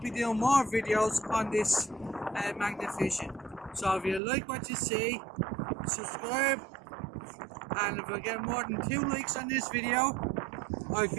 doing more videos on this magnet fishing. So if you like what you see, subscribe, and if I get more than 2 likes on this video, I'll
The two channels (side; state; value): left; drops out; at 4.2 s